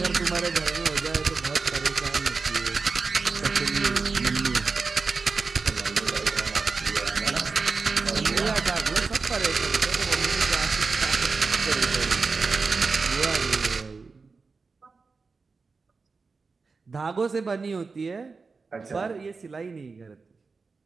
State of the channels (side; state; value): left; quieter; 4.4 dB